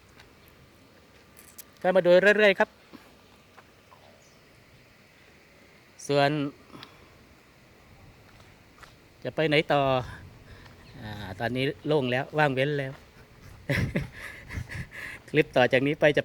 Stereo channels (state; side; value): identical; both; correlation 1.00